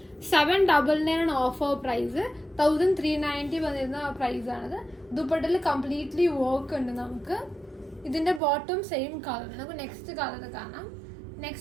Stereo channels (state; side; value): drops out; left; at 8.4 s